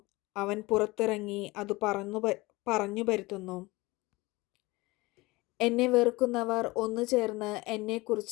അവൻ പുറത്തിറങ്ങി അത് പറഞ്ഞു പരത്തുന്നു. എന്നെ വെറുക്കുന്നവർ ഒന്നു ചേർന്ന്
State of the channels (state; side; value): quieter; right; 22.1 dB